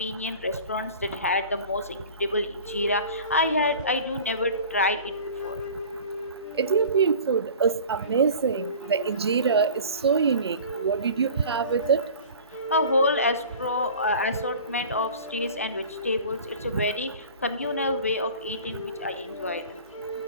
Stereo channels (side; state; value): both; inverted; correlation -0.41